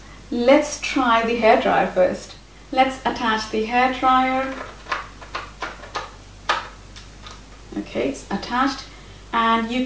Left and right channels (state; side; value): identical; both; correlation 1.00